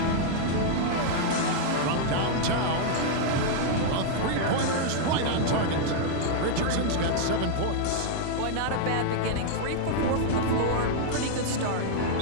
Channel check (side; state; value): both; different; correlation -0.01